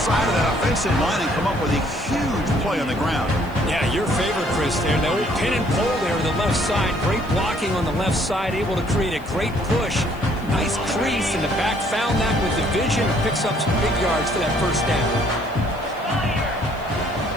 of that offensive line and come up with a huge play on the ground. Yeah, your favorite, Chris, there. The old pin and pull there on the left side. Great blocking on the left side, able to create a great push. Nice crease, and the back found that with the vision and picks up some big yards for that first down.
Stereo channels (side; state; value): left; noise; hiss, 26 dB below the sound